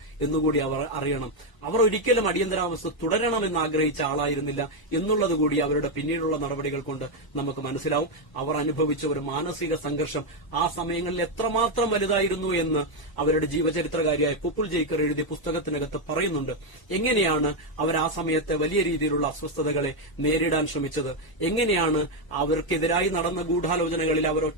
എന്നുകൂടി അവർ അറിയണം. അവർ ഒരിക്കലും അടിയന്തരാവസ്ഥ തുടരണമെന്ന് ആഗ്രഹിച്ച ആളായിരുന്നില്ല എന്നുള്ളതുകൂടി അവരുടെ പിന്നീടുള്ള നടപടികൾ കൊണ്ട് നമുക്ക് മനസ്സിലാവും. അവർ അനുഭവിച്ച ഒരു മാനസിക സംഘർഷം ആ സമയങ്ങളിൽ എത്രമാത്രം വലുതായിരുന്നു എന്ന് അവരുടെ ജീവചരിത്രകാരിയായ പുപ്പുൾ ജയ്ക്കർ എഴുതിയ പുസ്തകത്തിനകത്ത് പറയുന്നുണ്ട്. എങ്ങനെയാണ് അവർ ആ സമയത്തെ വലിയ രീതിയിലുള്ള അസ്വസ്ഥതകളെ നേരിടാൻ ശ്രമിച്ചത്, എങ്ങനെയാണ് അവർക്കെതിരായി നടന്ന ഗൂഢാലോചനകളിൽ അവർ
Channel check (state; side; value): late; right; 1.0 ms